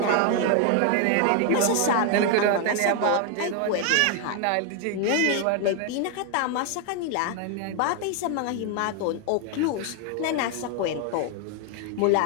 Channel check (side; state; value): both; different; correlation 0.01